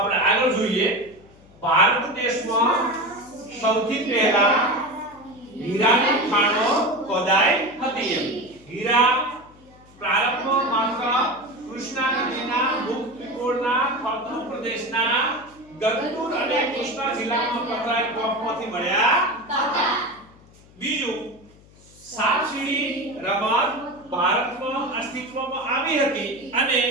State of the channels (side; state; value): left; noise; hum, 26 dB below the sound